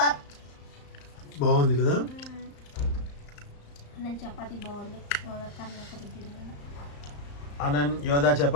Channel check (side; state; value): right; late; 35 ms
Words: బాగుంది కదా. నేను చపాతి బాగుంది ఆనంద్ యోధా